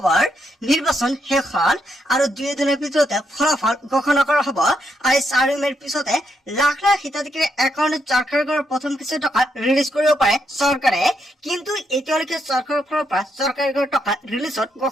নিৰ্বাচন শেষ হল আৰু 2 দিনৰ ভিতৰতে ফলাফল ঘোষণা কৰা হ'ব আৰু 4 মেৰ পিছতে লাখ লাখ হিতাধিকাৰীৰ একাউণ্টত চৰকাৰী ঘৰৰ প্ৰথম কিস্তি টকা ৰিলিজ কৰিব পাৰে চৰকাৰে। কিন্তু এতিয়ালৈকে চৰকাৰৰ ফালৰ পৰা চৰকাৰী ঘৰৰ টকা ৰিলিজত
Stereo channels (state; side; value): normal; both; correlation 0.79